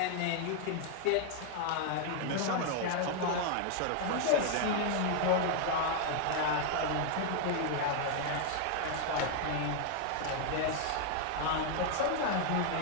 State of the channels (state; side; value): different; both; correlation 0.00